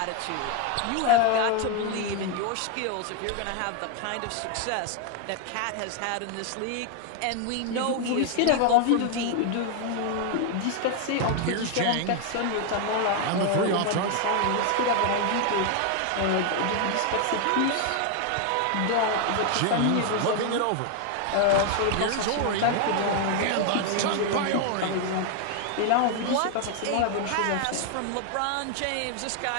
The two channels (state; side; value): different; both; correlation 0.01